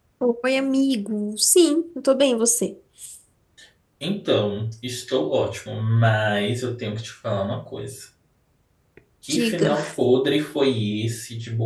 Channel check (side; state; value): both; identical; correlation 1.00